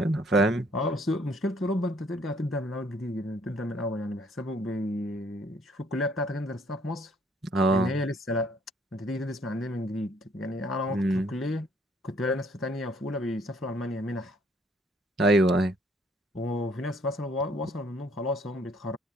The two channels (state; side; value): normal; both; correlation 0.63